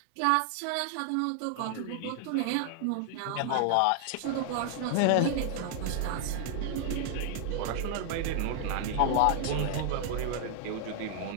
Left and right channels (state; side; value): different; both; correlation 0.00